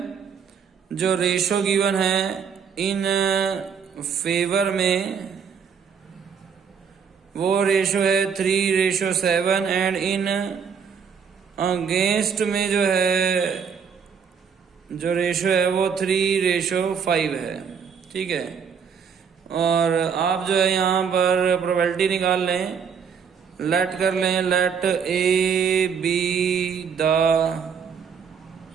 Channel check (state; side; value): quieter; left; 6.8 dB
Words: जो रेशो गिवन है इन फेवर में वो रेशो है 3:7 एंड इन अगेंस्ट में जो है जो रेशो है वो 3:5 है। ठीक है, और आप जो है यहाँ पर प्रोबेबिलिटी निकाल लें लेट कर लें, let A B the